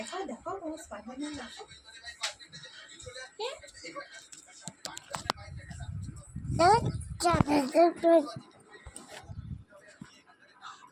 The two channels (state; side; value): identical; both; correlation 1.00